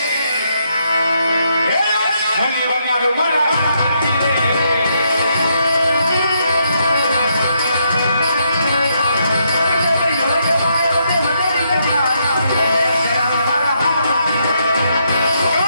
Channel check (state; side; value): inverted; both; correlation -0.77